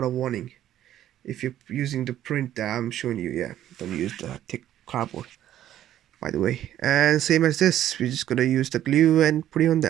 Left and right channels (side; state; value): left; quieter; 12.0 dB